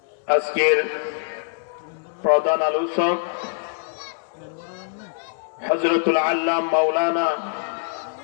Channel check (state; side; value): silent; right; 57 dB below the other